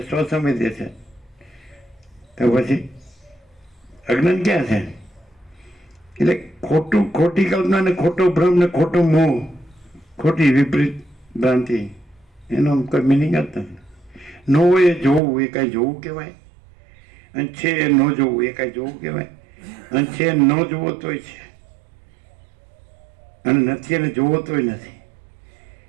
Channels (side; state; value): left; drops out; at 15.2 s